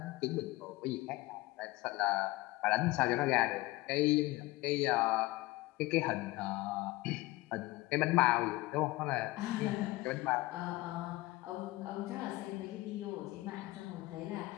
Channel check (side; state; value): right; quieter; 19.8 dB